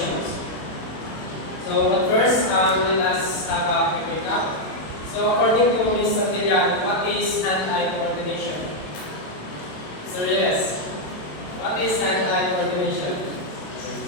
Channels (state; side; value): late; right; 27 ms